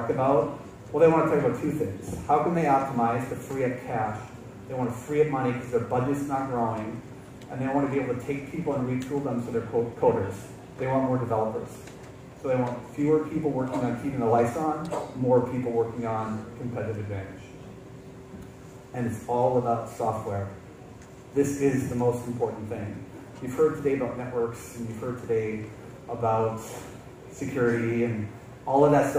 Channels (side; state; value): both; identical; correlation 1.00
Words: about, well, they want to talk about two things. How can they optimize to free up cash? They want to free up money because their budget's not growing. And they want to be able to take people and retool them so they're coders. They want more developers. So they want fewer people working on keeping the lights on, more people working on competitive advantage. And it's all about software. This is the most important thing. You've heard today about networks, and you've heard today about security, and all of that